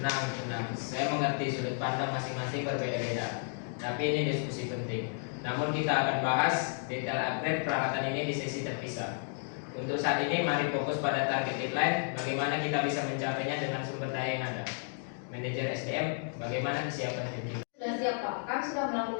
Saya mengerti sudut pandang masing-masing berbeda-beda. Tapi ini diskusi penting. Namun kita akan bahas detail upgrade peralatan ini di sesi terpisah. Untuk saat ini mari fokus pada target deadline, bagaimana kita bisa mencapainya dengan sumber daya yang ada. Manajer SDM, bagaimana kesiapan tim? Sudah siap Pak, kami sudah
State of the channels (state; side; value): silent; right; 56 dB below the other